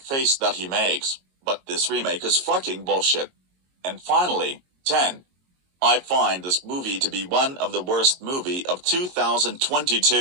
face that he makes, but this remake is fucking bullshit. And finally, 10. I find this movie to be one of the worst movie of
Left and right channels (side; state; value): left; late; 22 ms